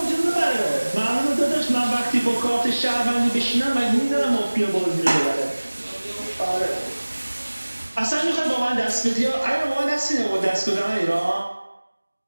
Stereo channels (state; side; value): inverted; both; correlation -1.00